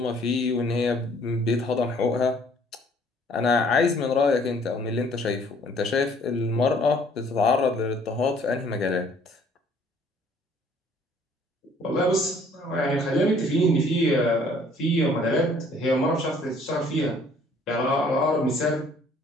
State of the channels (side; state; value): both; normal; correlation 0.59